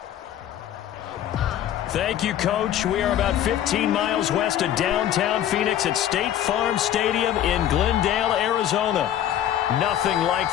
Thank you, Coach. We are about 15 miles west of downtown Phoenix at State Farm Stadium in Glendale, Arizona. Nothing like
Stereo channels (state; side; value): quieter; right; 11.1 dB